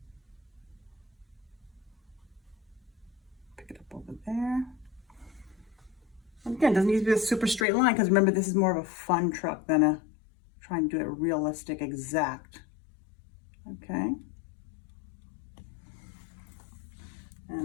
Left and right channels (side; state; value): right; drops out; at 7.7 s